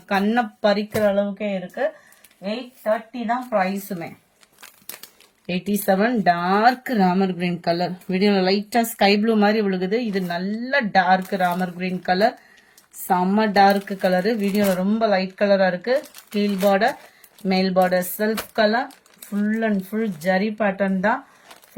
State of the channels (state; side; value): identical; both; correlation 1.00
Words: கண்ணை பறிக்கிற அளவுக்கே இருக்கு. 830 தான் பிரைஸுமே. 87 டார்க் ராமர் கிரீன் கலர். வீடியோல லைட்டா ஸ்கை ப்ளூ மாதிரி விழுகுது. இது நல்ல டார்க் ராமர் கிரீன் கலர். செம்ம டார்க் கலரு. வீடியோல ரொம்ப லைட் கலரா இருக்கு. கீழ் பார்டர் மேல் border self colour. Full and full zari pattern தான்.